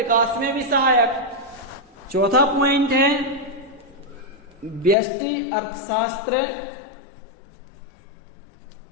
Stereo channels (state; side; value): drops out; right; at 5.0 s